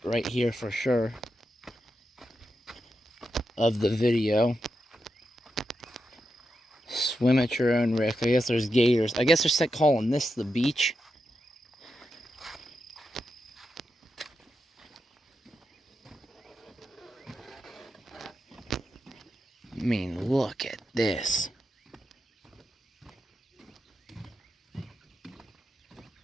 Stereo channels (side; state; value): both; normal; correlation 0.87